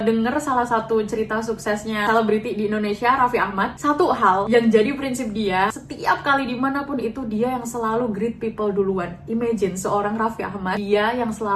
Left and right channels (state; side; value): identical; both; correlation 1.00